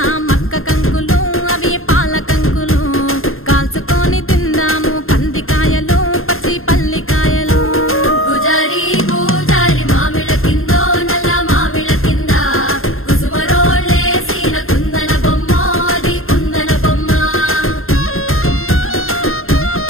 మక్క కంకులు అవి పాల కంకులు కాల్చుకొని తిందాము కందికాయలు పచ్చి పల్లికాయలు గుజారి గుజారి మామిళ్ళ కిందో నల్ల మామిళ్ళ కింద కుసుమరోళ్ళేసిన కుందన బొమ్మ అది కుందన బొమ్మ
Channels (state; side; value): late; right; 0.61 ms